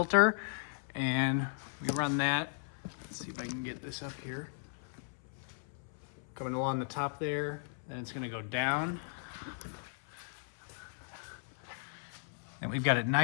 And we run that. Let's see if I can get this up here. Coming along the top there, then it's going to go down. And we've got it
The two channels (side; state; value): right; silent; 53 dB below the other